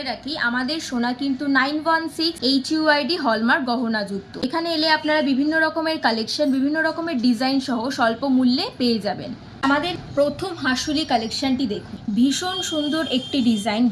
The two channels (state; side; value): identical; both; correlation 1.00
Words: রাখি, আমাদের সোনা কিন্তু 916 HUID হলমার্ক গহনাযুক্ত। এখানে এলে আপনারা বিভিন্ন রকমের কালেকশন, বিভিন্ন রকমের ডিজাইন সহ স্বল্প মূল্যে পেয়ে যাবেন। আমাদের প্রথম হাসুলি কালেকশনটি দেখুন, ভীষণ সুন্দর একটি ডিজাইন,